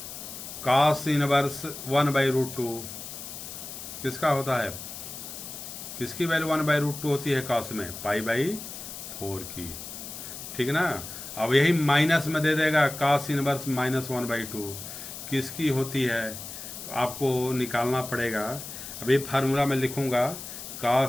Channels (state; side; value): noise; left; hiss, 10 dB below the sound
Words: cos इनवर्स 1/√2 किसका होता है, किसकी वैल्यू 1/√2 होती है cos में, π/4 की, ठीक ना। अब यही माइनस में दे देगा, cos इनवर्स -1/2 किसकी होती है, आपको निकालना पड़ेगा। अभी फार्मूला में लिखूंगा,